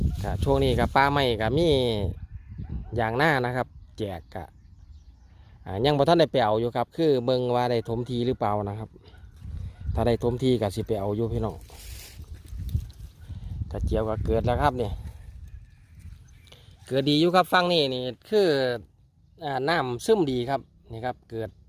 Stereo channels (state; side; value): identical; both; correlation 1.00